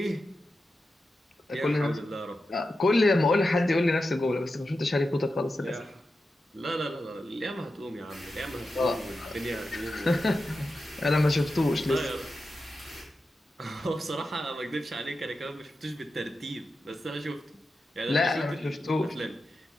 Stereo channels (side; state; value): both; normal; correlation 0.91